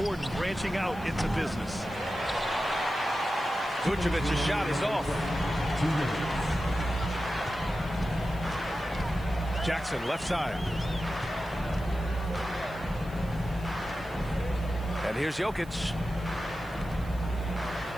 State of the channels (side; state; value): right; noise; hiss, 24 dB below the sound